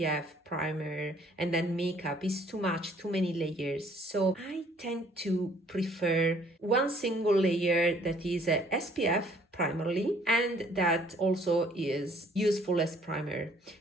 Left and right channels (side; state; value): both; normal; correlation 0.60